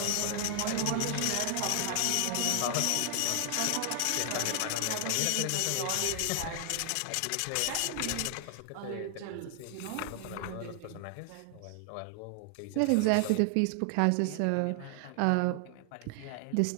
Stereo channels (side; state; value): both; different; correlation 0.00